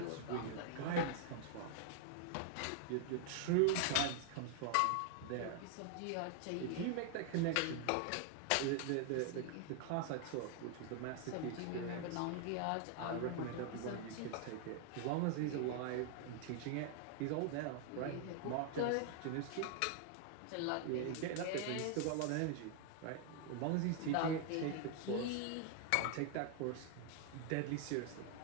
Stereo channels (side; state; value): both; different; correlation 0.00